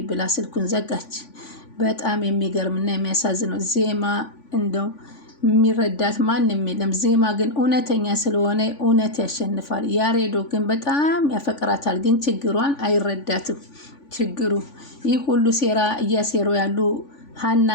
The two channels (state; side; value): late; right; 3.5 ms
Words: ብላ ስልኩን ዘጋች። በጣም የሚገርምና የሚያሳዝነው ዜማ እንደው የሚረዳት ማንም የለም። ዜማ ግን እውነተኛ ስለሆነ እውነት ያሸንፋል። ያሬዶ ግን በጣም ያፈቅራታል፣ ግን ችግሯን አይረዳትም። ችግሩ ይህ ሁሉ ሴራ እያሴሩ ያሉ